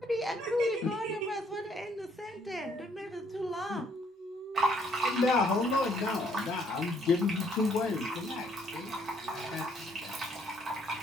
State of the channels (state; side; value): normal; both; correlation 0.66